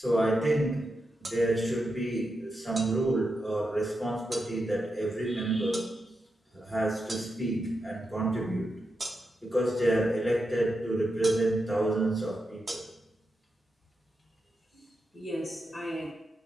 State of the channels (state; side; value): normal; both; correlation 0.87